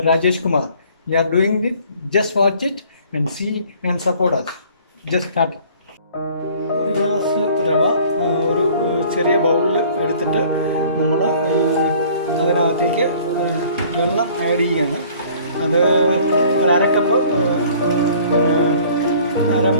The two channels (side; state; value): both; inverted; correlation -0.53